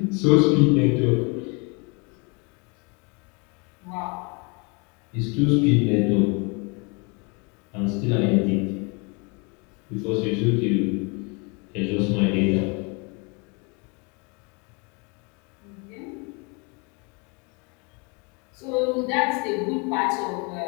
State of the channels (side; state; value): right; quieter; 31.7 dB